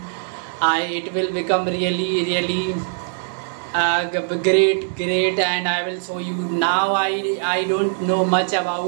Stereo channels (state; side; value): silent; left; digital silence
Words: it will become really great, and I will show you. Now I don't know much